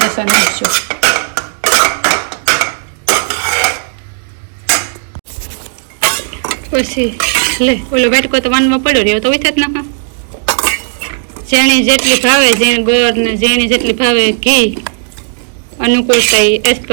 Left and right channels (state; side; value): silent; left; digital silence